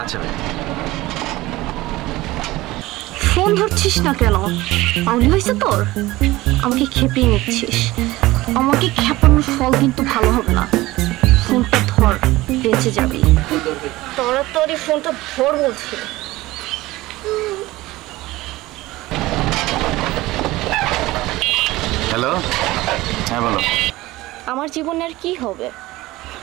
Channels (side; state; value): left; quieter; 18.7 dB